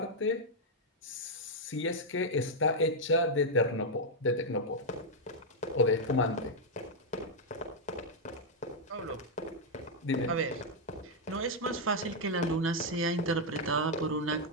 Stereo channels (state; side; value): normal; both; correlation -0.01